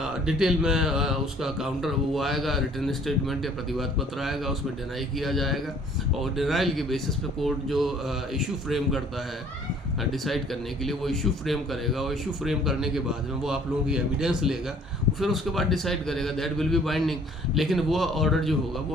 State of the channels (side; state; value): both; normal; correlation 0.56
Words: डिटेल में उसका काउंटर वो आएगा, रिटर्न स्टेटमेंट या प्रतिवाद पत्र आएगा, उसमें डिनाई किया जाएगा, और डिनाइल के बेसिस पे कोर्ट जो इशू फ्रेम करता है डिसाइड करने के लिए, वो इशू फ्रेम करेगा, और इशू फ्रेम करने के बाद में वो आप लोगों की एविडेंस लेगा, फिर उसके बाद डिसाइड करेगा, दैट विल बी बाइंडिंग। लेकिन वो ऑर्डर जो होगा वो